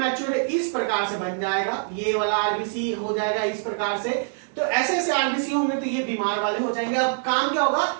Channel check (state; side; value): silent; left; digital silence